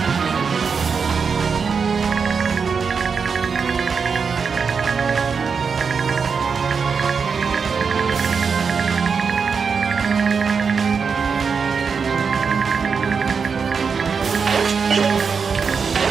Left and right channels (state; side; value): quieter; left; 5.7 dB